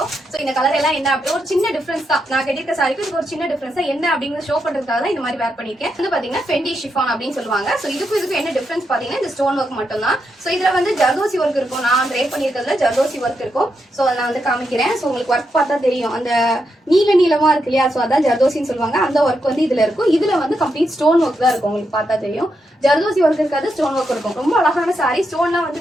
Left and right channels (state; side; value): normal; both; correlation 0.83